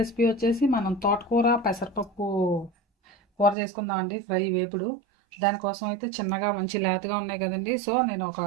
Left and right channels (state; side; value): drops out; left; at 3.6 s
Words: వచ్చేసి మనం తోటకూర పెసరపప్పు కూర చేసుకుందాం అండి. ఫ్రై వేపుడు. దానికోసం అయితే చిన్నగా మంచి లేతగా ఉన్నాయి కదండి. సో నేను ఒక